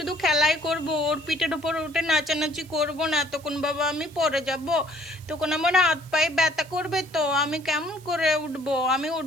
খেলাই করব, ওর পিঠের উপর উঠে নাচানাচি করব না। তখন বাবা আমি পড়ে যাব, তখন আমার হাত পায়ে ব্যথা করবে। তো আমি কেমন করে উঠবো? আমি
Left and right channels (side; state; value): right; noise; hiss, 23 dB below the sound